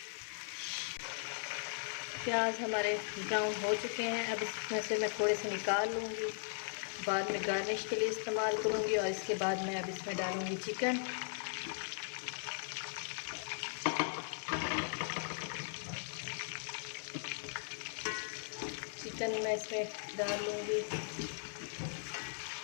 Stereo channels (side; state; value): right; silent; digital silence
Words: प्याज हमारे ब्राउन हो चुके हैं। अब इसमें से मैं थोड़े से निकाल लूँगी, बाद में गार्निश के लिए इस्तेमाल करूँगी। और इसके बाद मैं अब इसमें डालूँगी चिकन। चिकन मैं इसमें डाल लूँगी।